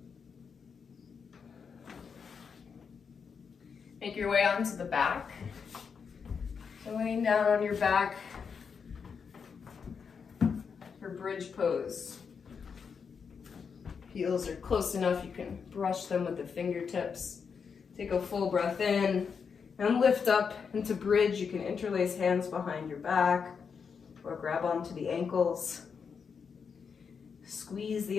Make your way onto the back. So laying down on your back for bridge pose. Heels are close enough, you can brush them with the fingertips. Take a full breath in and lift up into bridge. You can interlace hands behind your back or grab onto the ankles. Squeeze the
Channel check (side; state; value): right; quieter; 6.1 dB